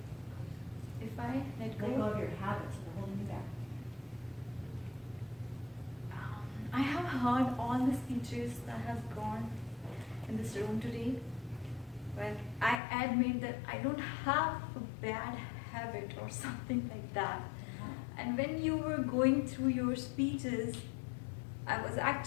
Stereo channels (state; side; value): drops out; right; at 12.8 s